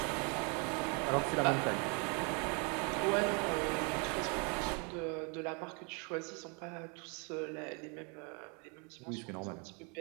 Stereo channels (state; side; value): quieter; left; 34.4 dB